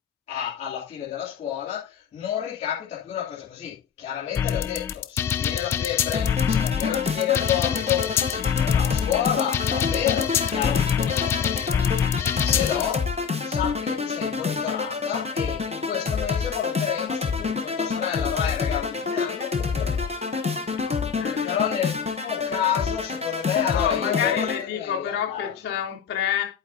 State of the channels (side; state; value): right; quieter; 7.1 dB